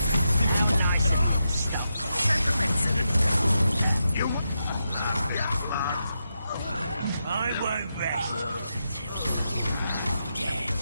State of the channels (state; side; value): inverted; both; correlation -0.86